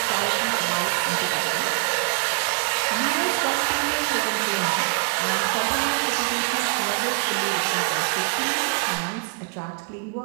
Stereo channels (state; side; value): quieter; left; 37.3 dB